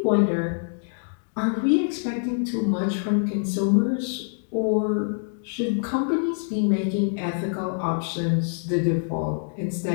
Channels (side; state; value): right; silent; 62 dB below the other